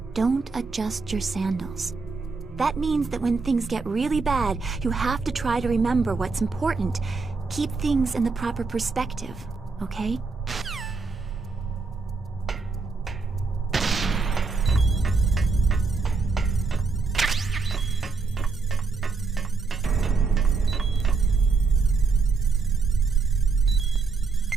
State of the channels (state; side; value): quieter; left; 4.4 dB